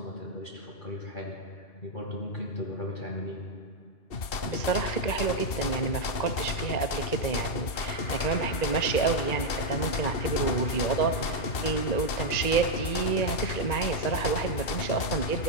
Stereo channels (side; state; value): right; late; 2.7 ms